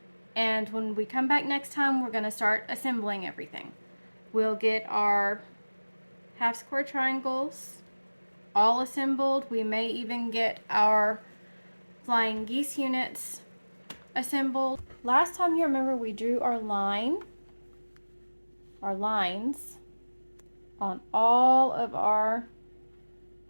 and when we come back next time, we're going to start assembling everything. We'll get our half square triangles all assembled. We may even get our flying geese units assembled. Last time, you remember, we drew our lines on all of our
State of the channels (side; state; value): both; inverted; correlation -1.00